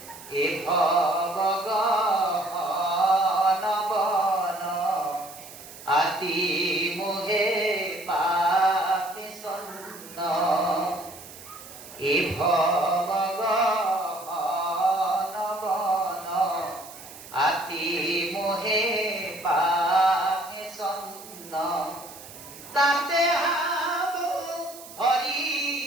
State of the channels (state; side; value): noise; right; hiss, 16 dB below the sound